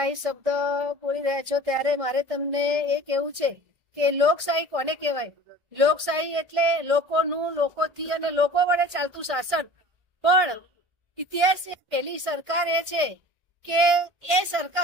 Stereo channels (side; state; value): left; late; 1.6 ms